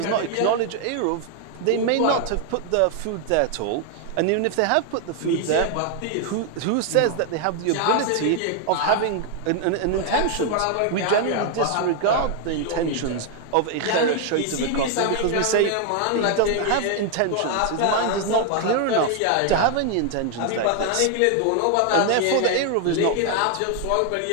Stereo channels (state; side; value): different; both; correlation 0.00